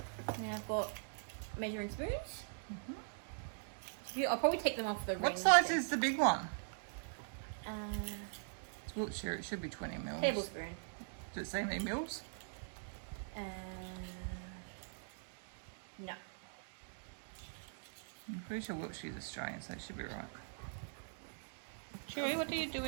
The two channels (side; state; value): left; silent; digital silence